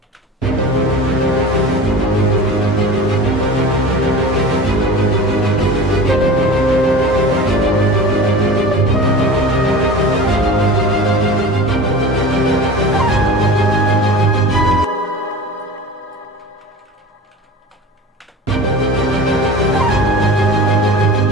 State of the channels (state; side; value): normal; both; correlation 0.35